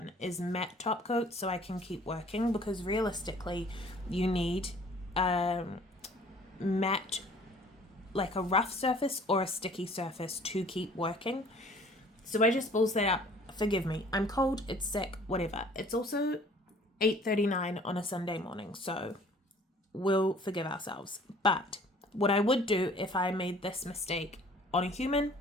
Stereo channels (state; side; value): normal; both; correlation 0.53